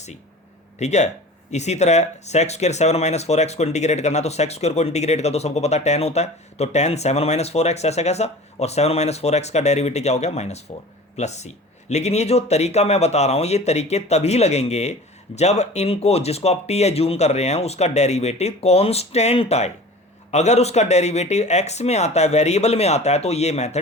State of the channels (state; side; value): normal; both; correlation 0.40